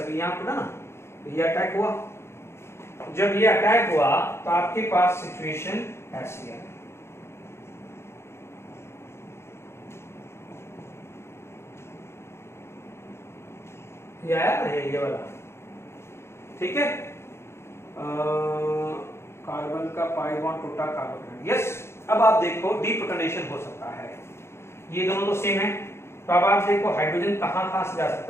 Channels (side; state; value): right; late; 0.12 ms